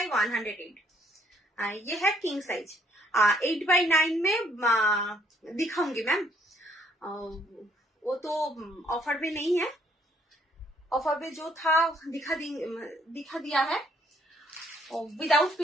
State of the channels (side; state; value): both; normal; correlation 0.66